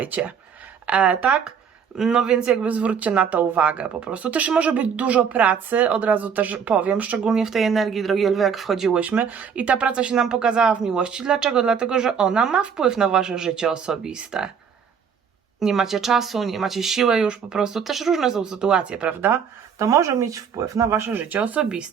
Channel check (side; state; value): left; quieter; 7.0 dB